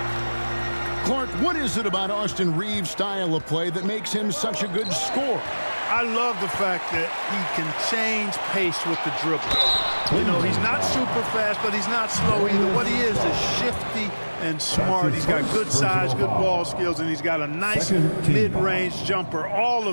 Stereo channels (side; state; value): both; inverted; correlation -1.00